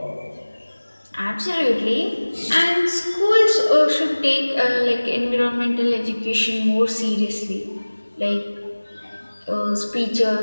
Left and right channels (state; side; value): inverted; both; correlation -1.00